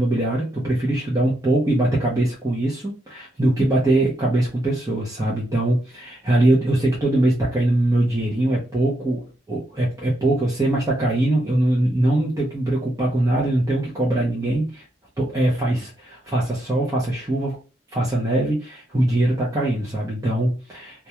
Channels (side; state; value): both; normal; correlation 0.80